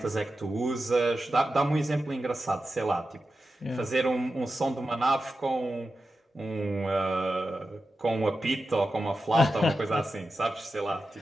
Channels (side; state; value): both; normal; correlation 0.91